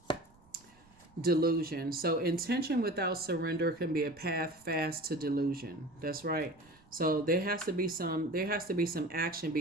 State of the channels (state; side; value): noise; right; rumble, 29 dB below the sound